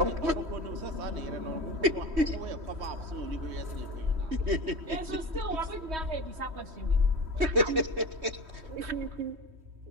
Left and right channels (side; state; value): left; late; 3.2 ms